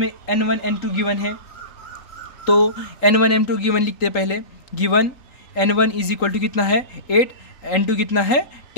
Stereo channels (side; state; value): right; late; 3.8 ms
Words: n1 n2 गिवन है, तो n1 n2 गिवन लिखते हैं पहले। Given n1 is equal to कितना है 8, n2 कितना है